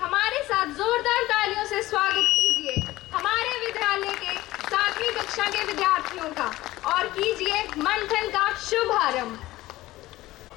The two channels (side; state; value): right; quieter; 17.3 dB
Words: हमारे साथ जोरदार तालियों से स्वागत कीजिए हमारे विद्यालय के 7वीं कक्षा के विद्यार्थियों का, और कीजिए मंथन का शुभारंभ।